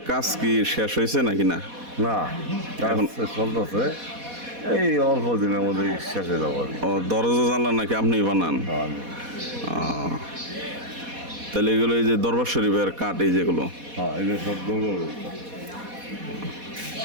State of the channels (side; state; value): left; late; 4.1 ms